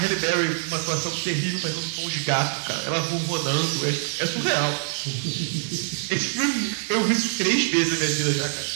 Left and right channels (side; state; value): left; silent; digital silence